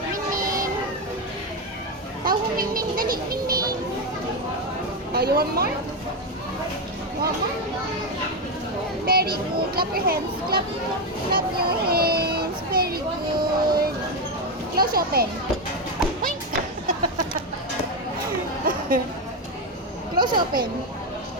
Tawag mo Mingming. Dali, Mingming. Oh, you want more? Want more? Very good. Clap your hands. Clap your hands. Very good. Close open. Oink. Close open.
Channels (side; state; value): both; normal; correlation 0.09